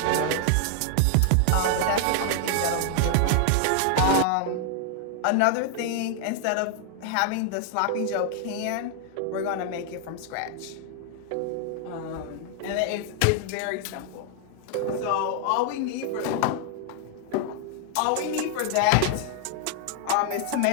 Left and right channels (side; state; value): both; different; correlation 0.00